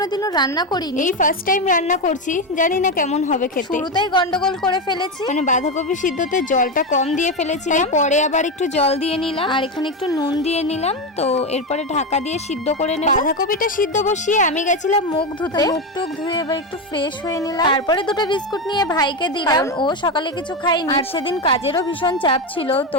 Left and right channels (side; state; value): both; normal; correlation 0.13